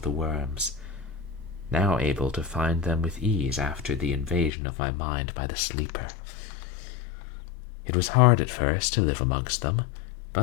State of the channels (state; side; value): drops out; right; at 4.5 s